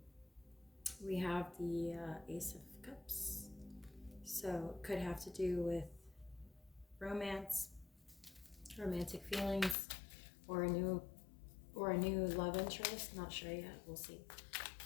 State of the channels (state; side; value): drops out; right; at 9.8 s